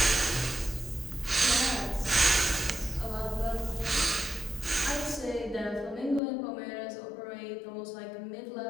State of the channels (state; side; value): drops out; right; at 6.2 s